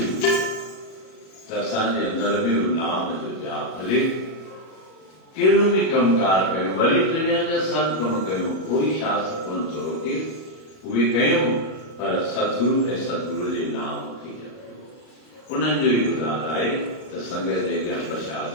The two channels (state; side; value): late; right; 38 ms